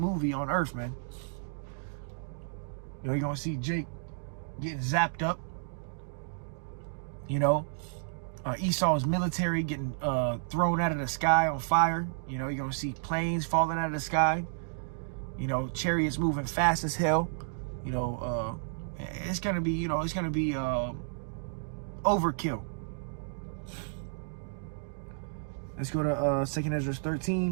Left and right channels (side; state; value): left; silent; digital silence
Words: on Earth, man. You know, you're going to see Jake getting zapped up. You know, Esau's military getting thrown out of the sky on fire. You know, you're going to see planes falling out of the sky. You know, chariots moving fast as hell. You know, it's going to be, you know, it's going to be overkill. Let's go to 2nd Ezra